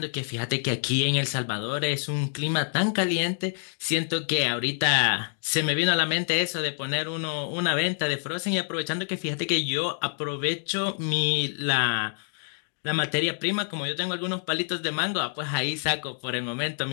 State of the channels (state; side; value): silent; right; digital silence